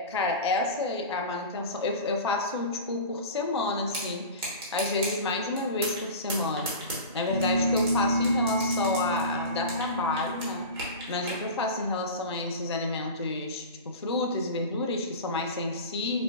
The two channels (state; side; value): inverted; both; correlation -0.30